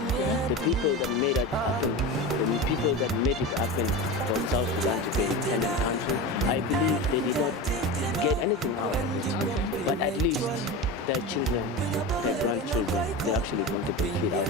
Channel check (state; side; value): normal; both; correlation 0.25